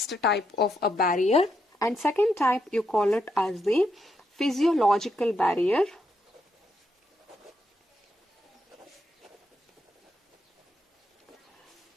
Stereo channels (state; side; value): normal; both; correlation 0.79